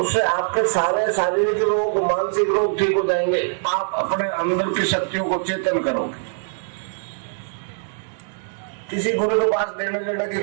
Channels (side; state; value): left; silent; digital silence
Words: आपके सारे शारीरिक रोग, मानसिक रोग ठीक हो जाएंगे। आप अपने अंदर की शक्तियों को चेतन करोगे। किसी गुरु के पास देने लेने की